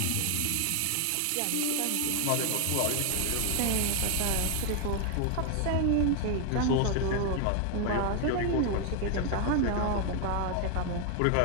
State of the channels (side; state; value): both; different; correlation 0.00